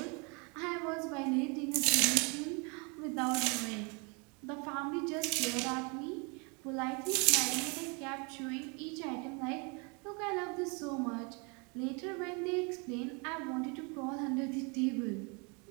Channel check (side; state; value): left; quieter; 32.4 dB